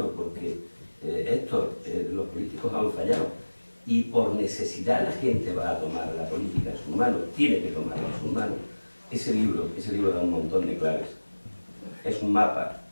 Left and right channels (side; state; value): both; inverted; correlation -1.00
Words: porque los políticos han fallado, y por necesidad la gente va a tomar la política en sus manos, tiene que tomarla en sus manos, ese libro da un montón de claves. Es un mapa,